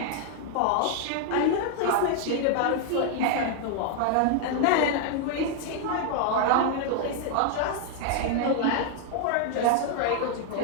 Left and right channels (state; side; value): different; both; correlation 0.00